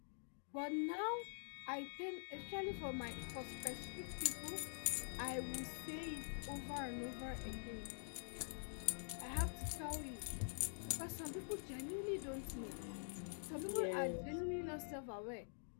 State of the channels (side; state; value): right; silent; digital silence